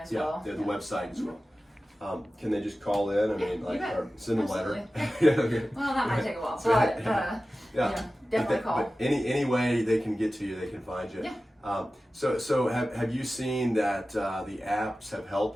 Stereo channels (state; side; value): normal; both; correlation 0.95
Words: well. Yeah, the website as well. Can they just call in? I mean, or send a letter. Well, that might take a while. But definitely call. But any way they can get to you, they can find you. Yeah. So have you seen that the apps have